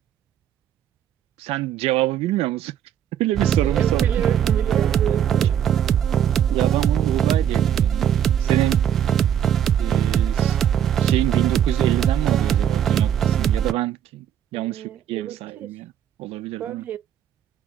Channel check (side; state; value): left; quieter; 9.7 dB